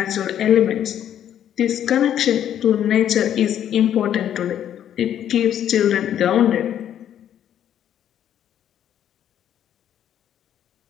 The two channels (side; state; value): right; quieter; 10.3 dB